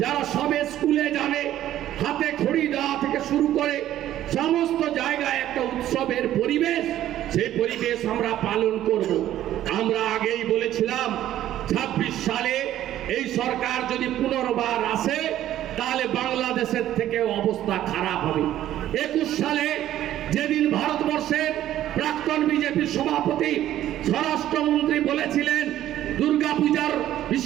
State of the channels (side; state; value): left; quieter; 12.6 dB